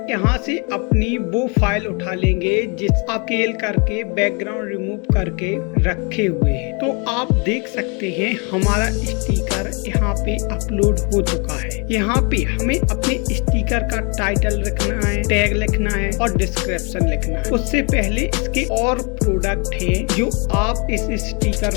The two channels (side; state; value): right; quieter; 33.2 dB